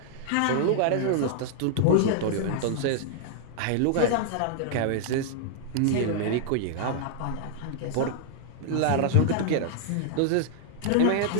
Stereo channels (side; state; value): both; different; correlation -0.01